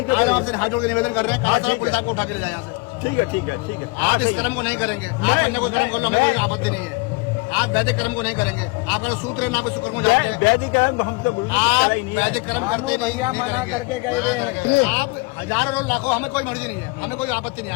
है। आज आपसे हाथ जोड़ के निवेदन कर रहे हैं, कहा पुलिस आपको उठा के ले जाए यहाँ से। ठीक है, ठीक है, ठीक है। आप इस कर्म को नहीं करेंगे। आप अन्य कोई कर्म कर लो, हमें कोई आपत्ति नहीं है। आप वैदिक कर्म को नहीं करेंगे। आपका सूत्र है ना, कोई शुक्र को जानते हैं। वैदिक कर्म हम तो आप वैदिक कर्म भैया मना करके गए हैं। आप हजारों लाखों, हमें कोई मर्जी नहीं है, हमें कोई आपत्ति नहीं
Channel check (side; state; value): right; quieter; 27.1 dB